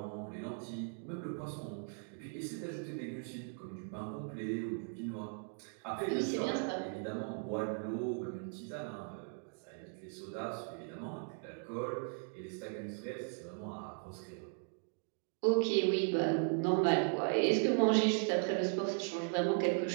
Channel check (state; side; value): silent; left; 53 dB below the other